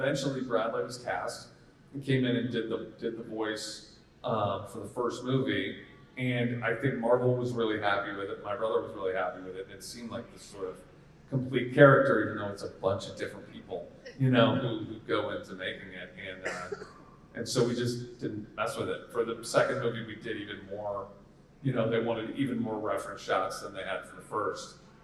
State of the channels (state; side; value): identical; both; correlation 1.00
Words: Bradley was cast and came in and did the voice for the first movie. And I think Marvel was really happy with it. My brother was really happy with it. It seemed like this sort of complete character, even though it's a bunch of different people, who go into making it. And so we just didn't mess with it. For the second movie, we did even more, they wanted even more reference shots than they had for the first.